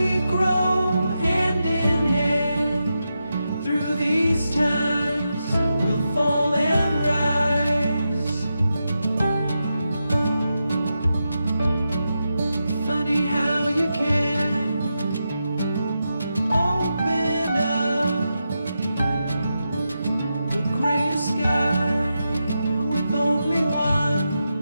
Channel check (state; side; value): inverted; both; correlation -0.88